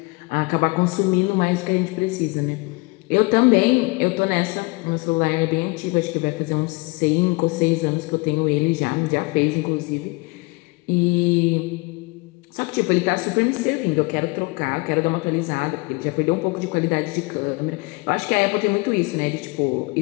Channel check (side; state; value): right; quieter; 26.9 dB